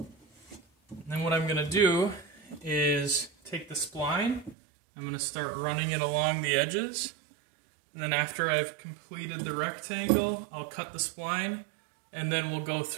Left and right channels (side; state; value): left; drops out; at 4.5 s